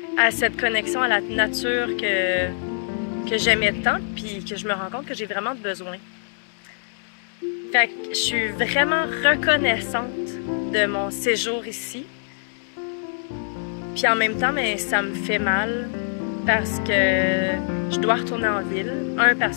à cette connexion à la nature que j'aimais tant, puis que je me rends compte que j'ai vraiment besoin. Fait que je suis vraiment reconnaissante de mon séjour ici. Puis en même temps, mais ça me fait mal parce que je dois retourner en ville. Un,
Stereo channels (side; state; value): right; silent; digital silence